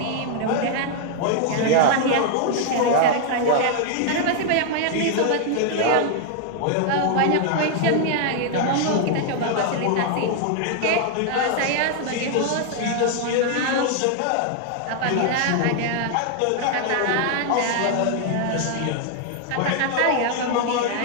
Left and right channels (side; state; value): both; different; correlation 0.00